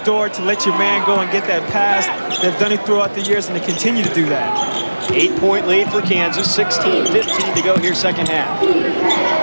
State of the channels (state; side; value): inverted; both; correlation -1.00